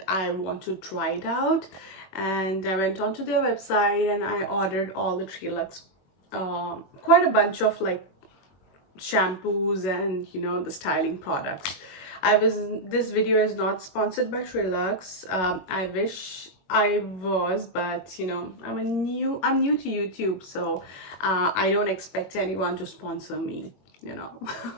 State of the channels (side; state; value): right; late; 21 ms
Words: I want to try it out. And I went onto their website and I ordered all the TreLuxe, quite a bunch of like shampoos and the styling products. This video is not sponsored by TreLuxe. I wish I was, but I'm new to YouTube, so I don't expect anyone to sponsor me, you know.